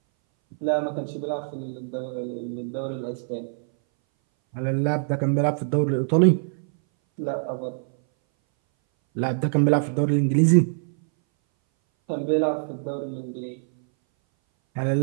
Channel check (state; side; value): silent; left; 60 dB below the other